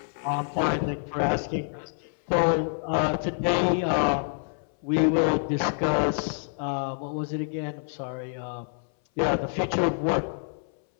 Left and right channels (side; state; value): right; silent; 59 dB below the other